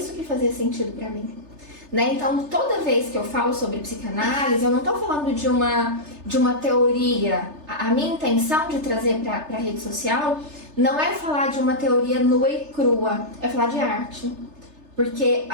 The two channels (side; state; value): left; late; 3.3 ms